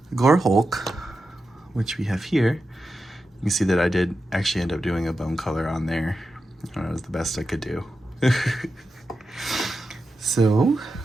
Gore Hulk, which we have here. You can see that I did actually end up doing a bone color on there. I don't know, it was the best I could do. So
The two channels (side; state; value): both; normal; correlation 0.90